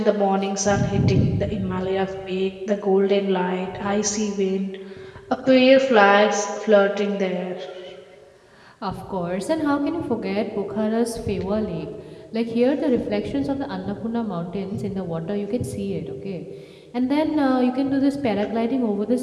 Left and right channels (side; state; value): both; identical; correlation 1.00